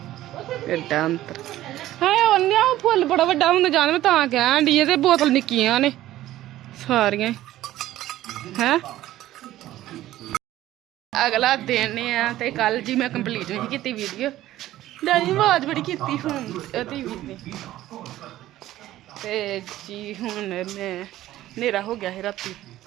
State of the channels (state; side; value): quieter; left; 14.5 dB